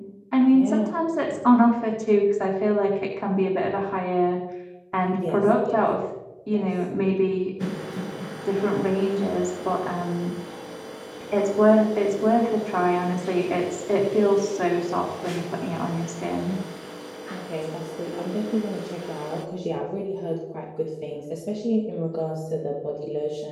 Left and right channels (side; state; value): both; identical; correlation 1.00